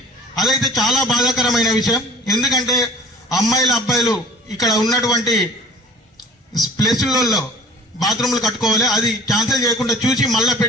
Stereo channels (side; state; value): both; normal; correlation 0.46